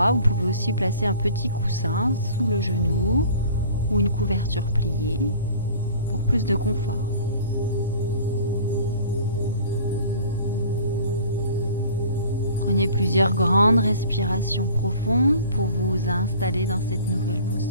vous pouvez aussi placer un petit coussin sous le genou ou une couverture pliée pour plus de confort. Prenez plusieurs grandes respirations profondes pour vous installer dans cette nouvelle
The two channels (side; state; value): both; inverted; correlation -0.46